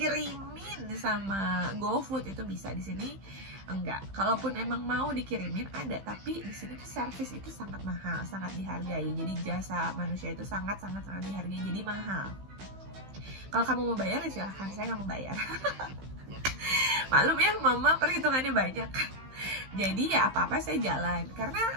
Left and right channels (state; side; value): late; left; 15 ms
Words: sama GoFood itu bisa. Di sini enggak. Kalaupun emang mau dikirimin ada, tapi di sini tuh service itu sangat mahal, sangat dihargai. Jadi jasa manusia itu sangat dihargai, jadi mahal. Kalau kamu mau bayar ya silahkan, saya nggak mau bayar. Maklum ya, mama perhitungannya banyak. Jadi ya apa-apa saya jalan, karena